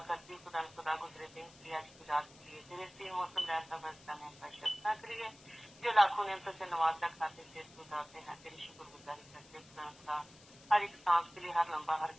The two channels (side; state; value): left; noise; hiss, 22 dB below the sound